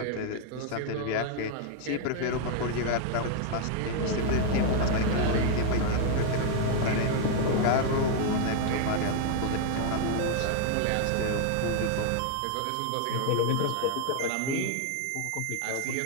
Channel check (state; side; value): different; both; correlation 0.00